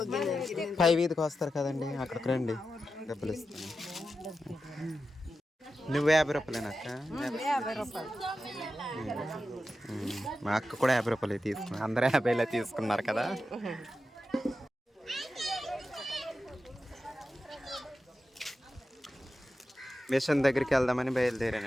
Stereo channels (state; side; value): normal; both; correlation 0.91